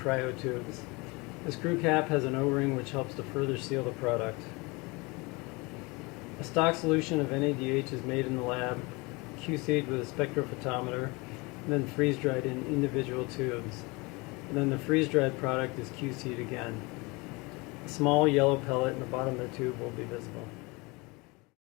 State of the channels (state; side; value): quieter; right; 26.1 dB